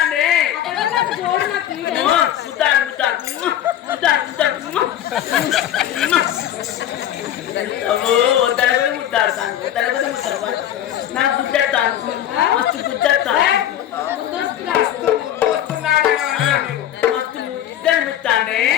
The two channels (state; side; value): quieter; right; 11.4 dB